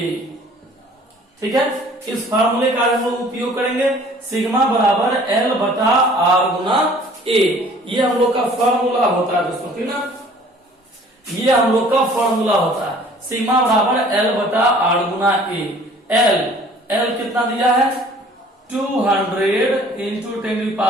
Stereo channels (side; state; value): both; normal; correlation 0.52